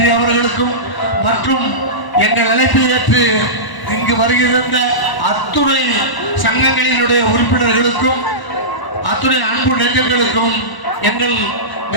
அவர்களுக்கும் மற்றும் எங்கள் அழைப்பை ஏற்று இங்கு வருகின்ற அத்துணை சங்கங்களினுடைய உறுப்பினர்களுக்கும் அத்துணை அன்பு நெஞ்சங்களுக்கும் எங்கள்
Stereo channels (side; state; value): right; late; 1.0 ms